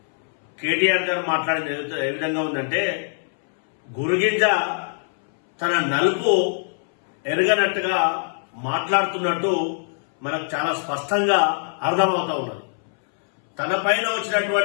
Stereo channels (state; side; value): silent; right; 64 dB below the other